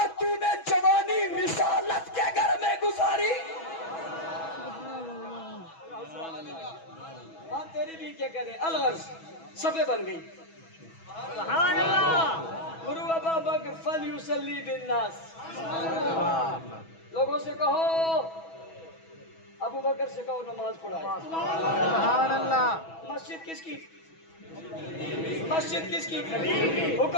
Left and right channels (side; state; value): right; late; 6.1 ms